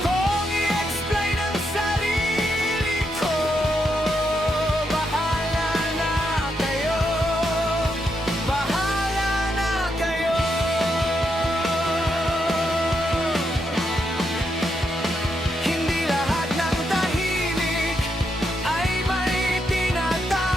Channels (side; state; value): both; normal; correlation 0.81